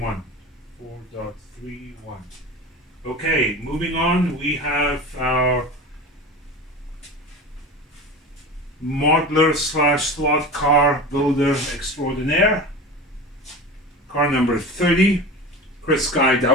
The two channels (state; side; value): normal; both; correlation 0.31